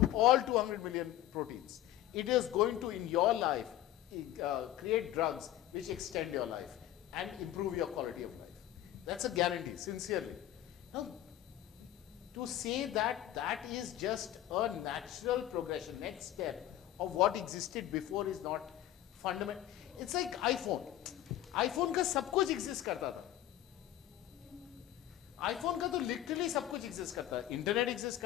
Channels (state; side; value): quieter; right; 13.1 dB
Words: all 200 million proteins. It is going to, in your life, create drugs which extend your life and improve your quality of life. That's a guarantee, sincerely. Now, to say that that is just a natural progression, next step of what existed before is not fundamental. It's like iPhone. iPhone का सब कुछ exist करता था. iPhone का तो literally सब कुछ exist करता था. Internet exist